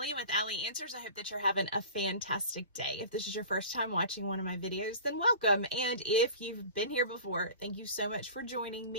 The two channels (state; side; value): inverted; both; correlation -0.38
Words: with Allie Answers. I hope that you're having a fantastic day. If this is your first time watching one of my videos, then welcome. And if you've been here before, thank you so much for joining